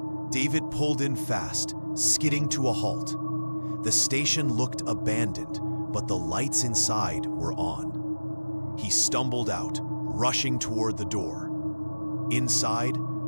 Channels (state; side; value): inverted; both; correlation -1.00